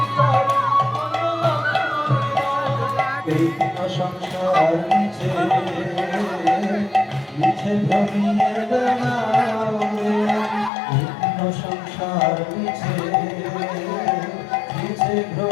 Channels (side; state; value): right; drops out; at 10.7 s